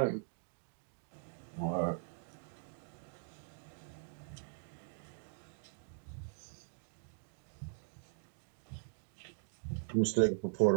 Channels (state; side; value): silent; left; digital silence